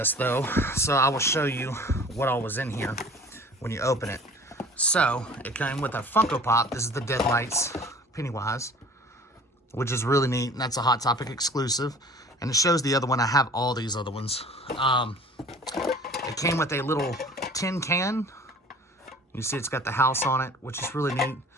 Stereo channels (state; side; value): normal; both; correlation 0.47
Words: though, so I will show you what all was in here when you open it. So it came with a Funko Pop. This is the Deadlights Pennywise, which is really neat, and that's a Hot Topic exclusive. And it shows the other one. I have all these other ones. It came with a little tin can. You see it's got the house on it, which is really neat.